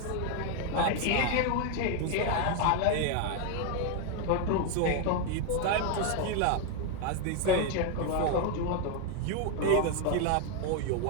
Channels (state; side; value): different; both; correlation 0.01